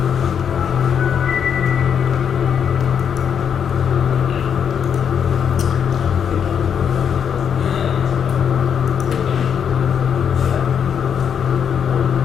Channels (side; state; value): right; quieter; 7.8 dB